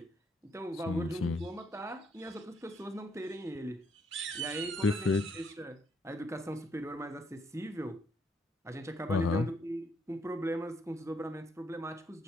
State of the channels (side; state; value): both; normal; correlation 0.71